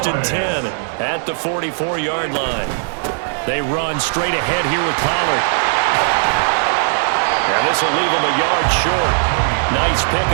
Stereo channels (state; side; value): silent; left; digital silence